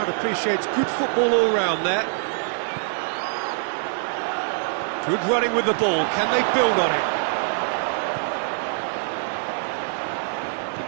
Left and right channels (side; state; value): left; silent; digital silence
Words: appreciates good football all round there. Good running with the ball, can they build on it?